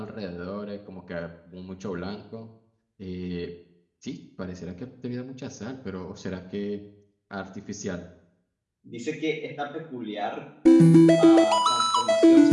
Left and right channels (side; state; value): both; identical; correlation 1.00